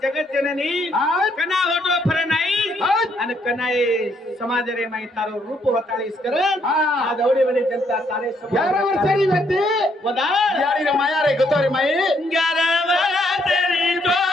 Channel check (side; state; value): both; normal; correlation 0.71